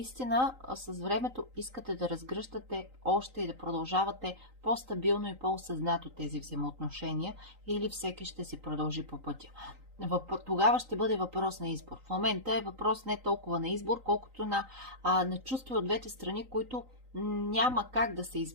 с времето искате да разгръщате още и да продължавате по-стабилно и по-осъзнато тези взаимоотношения, или всеки ще си продължи по пътя. Тогава ще бъде въпрос на избор. В момента е въпрос не толкова на избор, колкото на чувства от двете страни, които няма как да се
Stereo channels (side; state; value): left; late; 3.9 ms